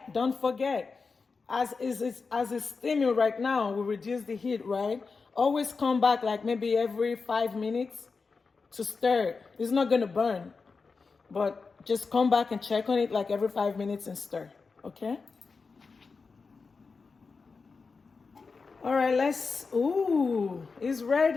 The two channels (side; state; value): right; quieter; 4.6 dB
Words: as it's steaming right now, we reduce the heat, right? Always come back like maybe every 5 minutes to stir it. It's not gonna burn, but just come back and check on it like every 5 minutes and stir, okay? All right, ooh, it's